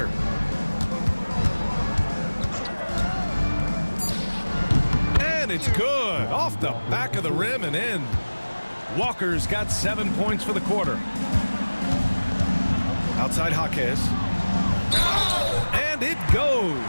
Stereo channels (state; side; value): inverted; both; correlation -1.00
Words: And it's good. Off the back of the rim and in. Walker's got 7 points for the quarter. Outside Jaquez. And it